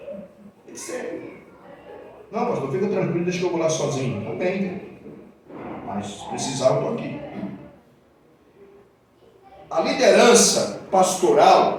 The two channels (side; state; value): both; identical; correlation 1.00